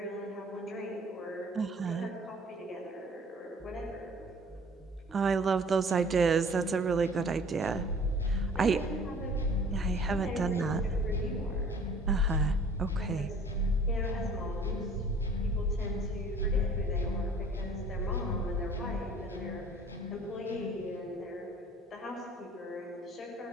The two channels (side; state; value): both; normal; correlation 0.52